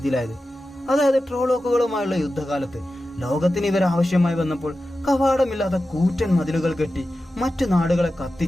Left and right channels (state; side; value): normal; both; correlation 0.93